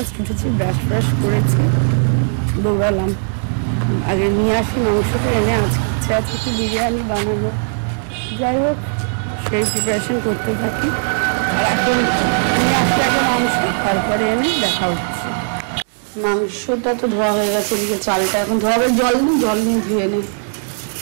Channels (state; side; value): silent; left; digital silence